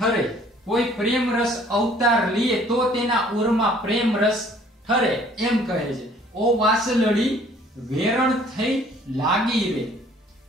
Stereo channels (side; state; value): both; normal; correlation 0.57